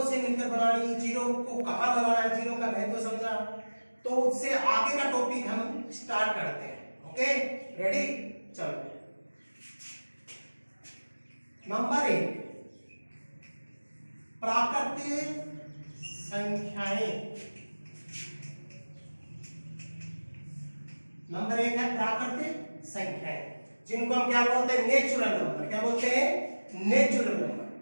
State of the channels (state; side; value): inverted; both; correlation -1.00